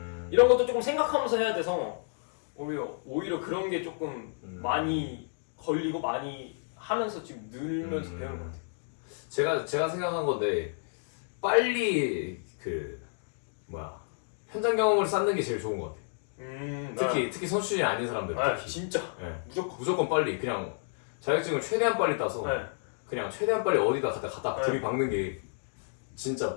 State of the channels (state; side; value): silent; right; digital silence